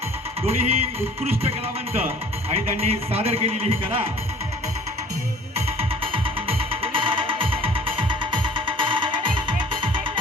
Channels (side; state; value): both; normal; correlation 0.49